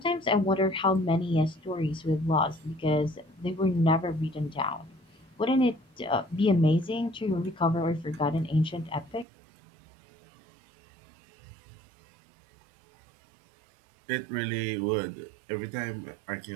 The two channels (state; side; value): drops out; left; at 9.2 s